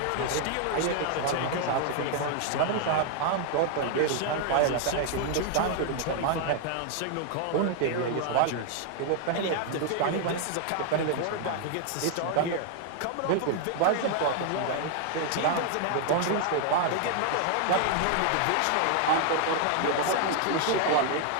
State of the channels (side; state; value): both; different; correlation 0.00